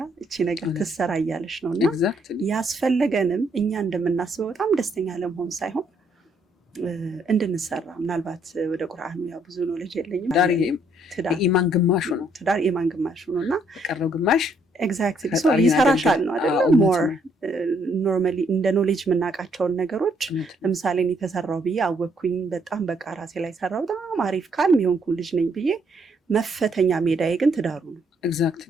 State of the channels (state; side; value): normal; both; correlation 0.69